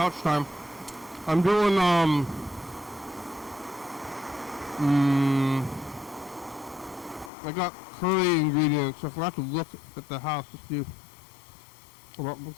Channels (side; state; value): right; drops out; at 7.3 s